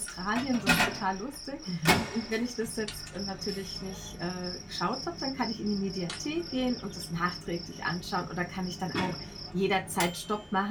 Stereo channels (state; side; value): identical; both; correlation 1.00